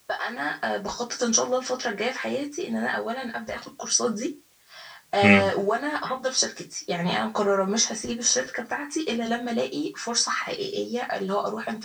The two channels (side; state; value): both; identical; correlation 1.00